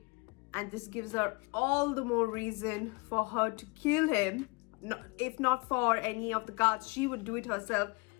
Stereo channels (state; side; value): quieter; right; 28.1 dB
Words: and this gives her all the more reason for her to kill him. If not for any of the guards, she would do it herself,